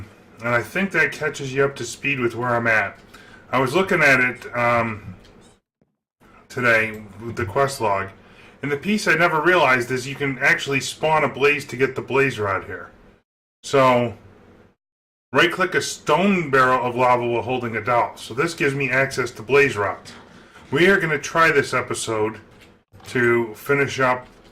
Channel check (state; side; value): identical; both; correlation 1.00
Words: I think that catches you up to speed with where I'm at. I was looking at it today with the quest log, and the piece I never realized is you can actually spawn a blaze to get the blaze rod here. So, right-click a stone barrel of lava while holding a dowel. So this gives me access to blaze rods. We are going to try this episode to finish up